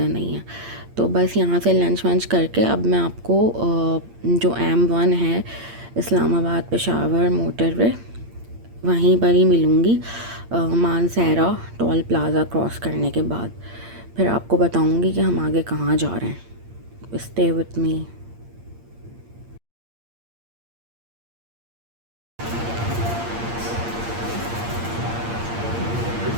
नहीं है। तो बस यहाँ से लंच वंच करके अब मैं आपको जो M1 है इस्लामाबाद पेशावर मोटरवे, वहीं पर ही मिलूँगी मानसहरा टोल प्लाज़ा क्रॉस करने के बाद। फिर आपको बताऊँगी कि हम आगे कहाँ जा रहे हैं। स्टे विथ मी।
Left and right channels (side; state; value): left; late; 8.7 ms